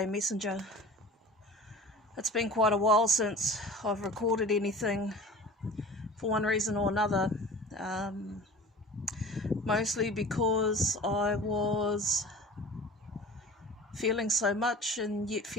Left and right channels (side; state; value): both; normal; correlation 0.40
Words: Messenger. It's been quite a while since I've recorded anything for one reason or another. Mostly because I was feeling so much and yet